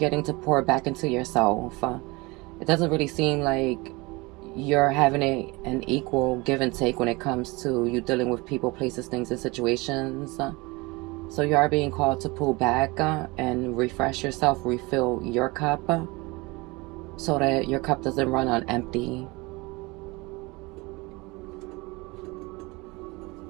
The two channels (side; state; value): left; quieter; 24.4 dB